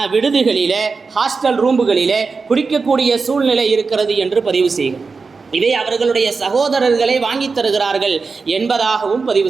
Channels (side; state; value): left; quieter; 4.6 dB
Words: விடுதிகளில், ஹாஸ்டல் ரூம்புகளில் குடிக்கக்கூடிய சூழ்நிலை இருக்கிறது என்று பதிவு செய்கிறார். இதை அவர்களுடைய சகோதரர்களை வாங்கி தருகிறார்கள் என்பதாகவும்